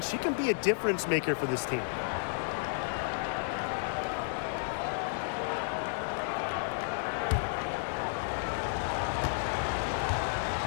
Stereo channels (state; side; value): silent; right; 56 dB below the other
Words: she can be a difference maker for this team.